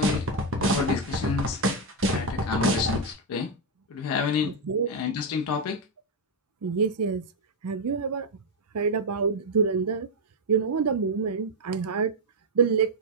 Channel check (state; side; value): normal; both; correlation 0.01